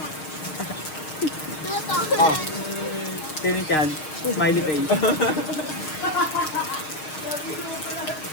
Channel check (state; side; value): late; right; 6.5 ms